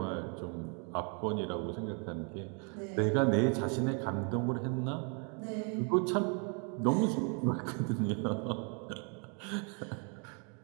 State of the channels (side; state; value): left; quieter; 37.8 dB